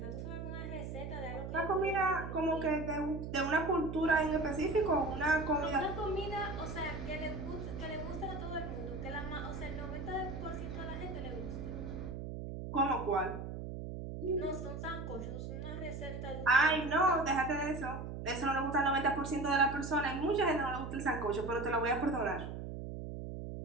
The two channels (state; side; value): noise; right; hum, 7 dB below the sound